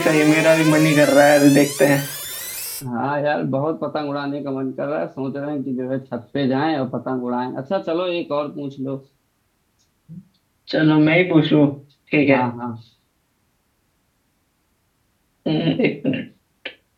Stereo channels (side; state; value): both; identical; correlation 1.00